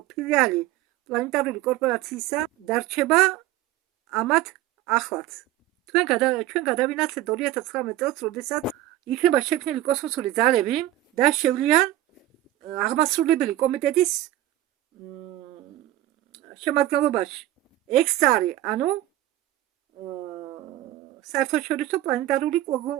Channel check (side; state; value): left; quieter; 14.5 dB